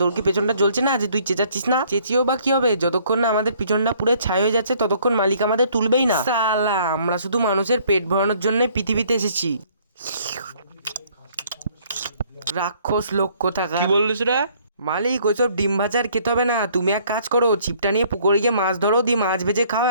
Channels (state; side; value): inverted; both; correlation -0.61